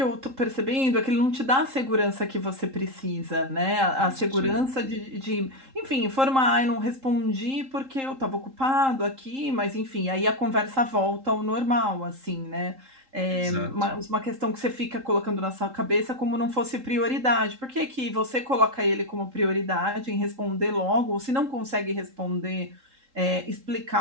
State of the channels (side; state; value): left; late; 3.8 ms